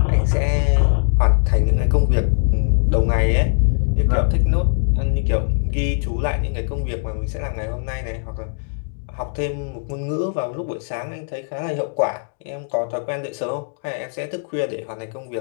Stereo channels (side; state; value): right; silent; digital silence